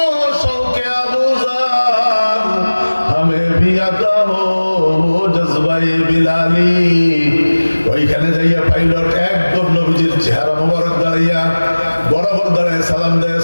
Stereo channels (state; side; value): inverted; both; correlation -1.00